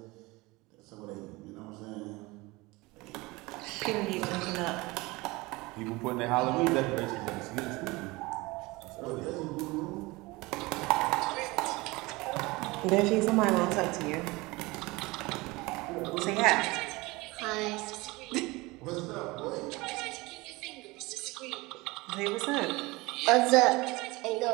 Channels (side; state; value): left; quieter; 22.8 dB